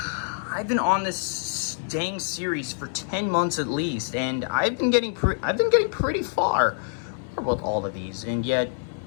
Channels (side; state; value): right; silent; digital silence